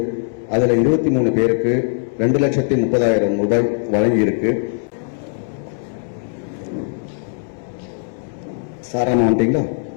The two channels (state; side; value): silent; right; 66 dB below the other